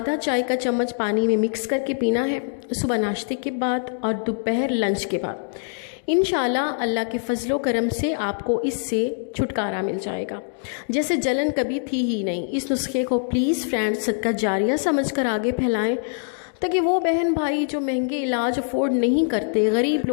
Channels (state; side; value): silent; right; digital silence